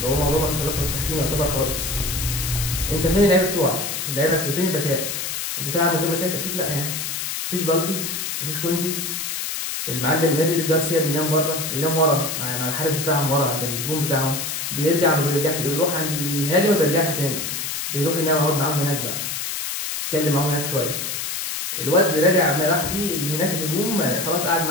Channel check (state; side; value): noise; left; hiss, 3 dB below the sound